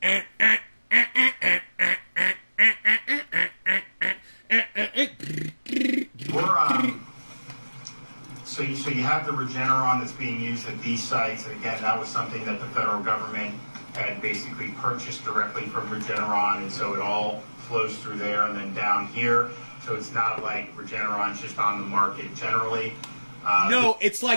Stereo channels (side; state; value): both; inverted; correlation -1.00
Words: So you have the Regeneron that's being used at these sites, and again, that was something that the federal government had basically purchased directly from Regeneron, and so it all flows through there and then down here. So it's not like Regeneron's just on the market generally. No, it's